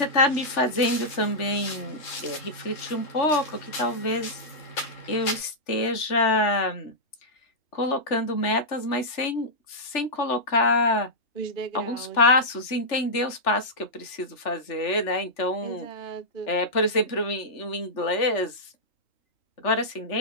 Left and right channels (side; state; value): right; late; 3.4 ms